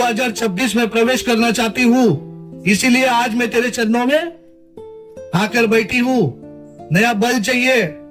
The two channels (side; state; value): both; identical; correlation 1.00